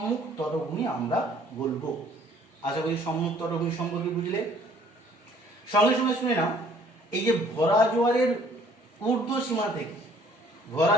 তটভূমি আমরা বলবো। আশা করি সম্মুখ তটভূমি সম্পর্কে বুঝলে। সঙ্গে সঙ্গে শুনে নাও, এই যে ভরা জোয়ারের ঊর্ধ্ব সীমা থেকে, ভরা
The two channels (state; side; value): normal; both; correlation 0.58